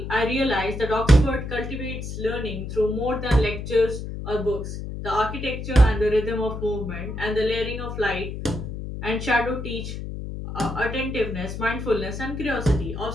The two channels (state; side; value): noise; left; hum, 7 dB below the sound